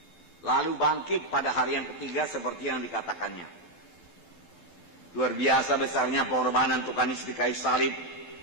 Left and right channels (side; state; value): right; late; 12 ms